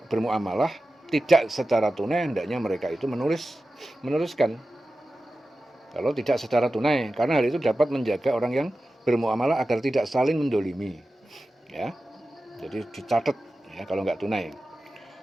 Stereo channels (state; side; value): normal; both; correlation 0.94